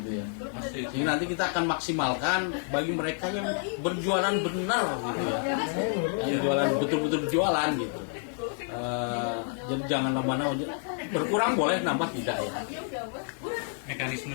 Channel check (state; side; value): silent; right; 55 dB below the other